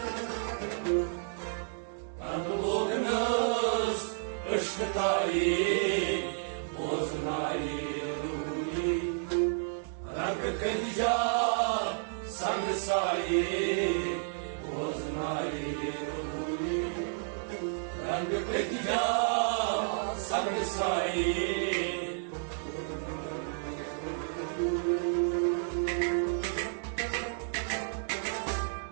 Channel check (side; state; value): left; silent; digital silence